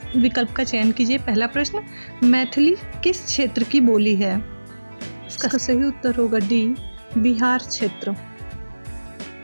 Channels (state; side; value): inverted; both; correlation -1.00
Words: विकल्प का चयन कीजिए। पहला प्रश्न, मैथिली किस क्षेत्र की बोली है? इसका सही उत्तर होगा डी, बिहार क्षेत्र।